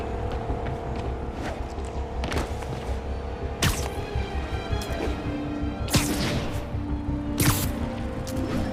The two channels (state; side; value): identical; both; correlation 1.00